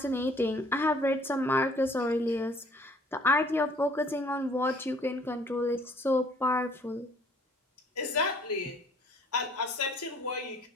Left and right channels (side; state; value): both; normal; correlation 0.57